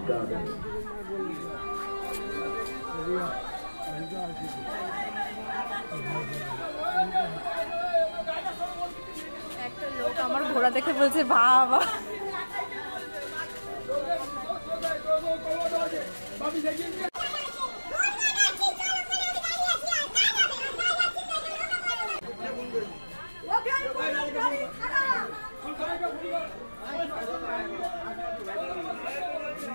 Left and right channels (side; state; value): both; inverted; correlation -1.00